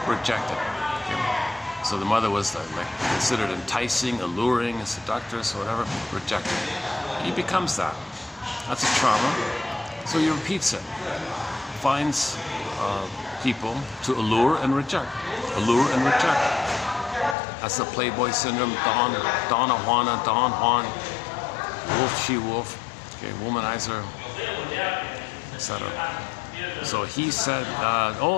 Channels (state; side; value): drops out; right; at 17.4 s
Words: rejected. Okay. So the mother was like considered enticing, alluring, seductress, or whatever, rejected. He becomes that. That's a trauma. So he repeats it. Finds people to allure and reject. Allure and reject. That's the Playboy syndrome. Donna Juana, Don Juan, wolf, she wolf, okay, womanizer, etc. So he said,